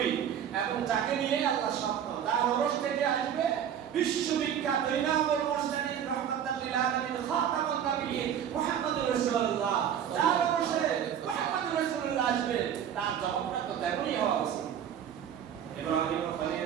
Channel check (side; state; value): left; quieter; 9.1 dB